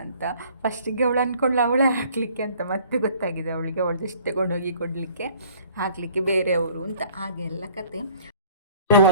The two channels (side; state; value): both; inverted; correlation -0.54